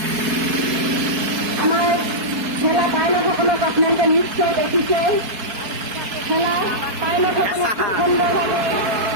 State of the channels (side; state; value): left; late; 4.6 ms